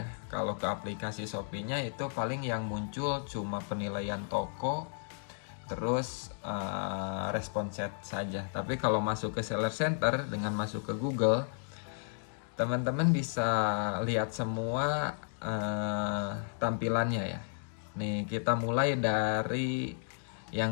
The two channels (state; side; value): silent; right; digital silence